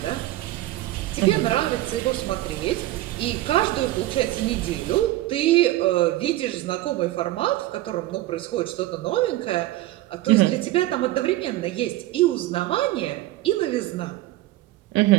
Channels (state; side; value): quieter; left; 16.3 dB